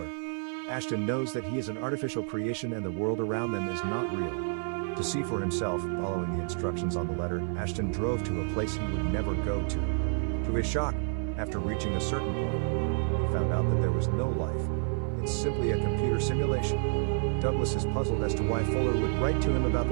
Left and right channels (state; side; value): silent; left; 58 dB below the other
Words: Ashton knows that he is an artificial creation and the world around them is not real. To see for himself, following the instructions on the letter, Ashton drove to a place he would never go to. To his shock, after reaching a certain point, he found out that there was no life. It's simply a computer simulation. Douglas is puzzled as to why Fuller would write to him about